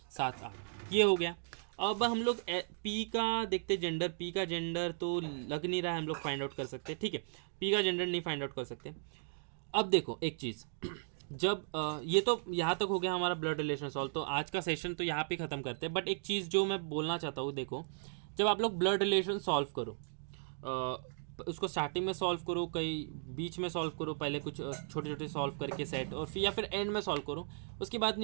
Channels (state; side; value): silent; left; digital silence